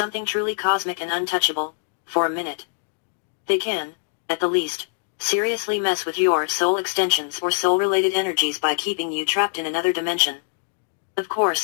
truly cosmic and untouchable, for a minute. They can, at the least, seriously mess with your soul extensions or soul-related energies by keeping you trapped in another dimension. Of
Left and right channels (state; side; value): silent; right; digital silence